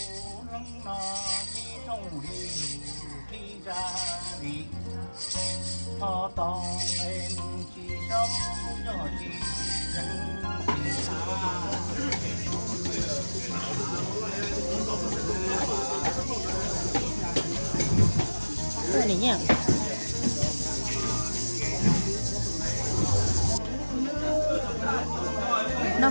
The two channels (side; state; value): both; inverted; correlation -1.00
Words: lăng nọ đi trong đi đi ra đi thọ tòng em chỉ sống cho chỉ chân chỉ cái này nhá nó